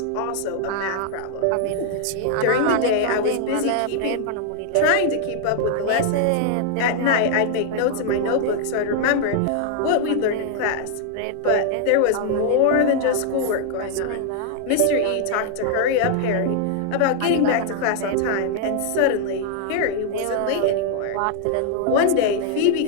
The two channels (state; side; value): different; both; correlation 0.00